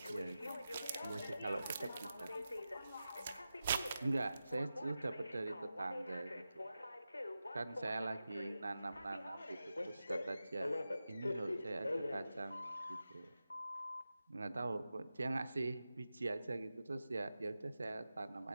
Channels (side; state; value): both; inverted; correlation -0.92